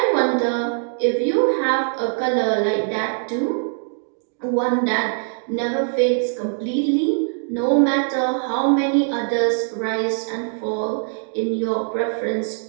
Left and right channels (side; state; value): left; silent; 64 dB below the other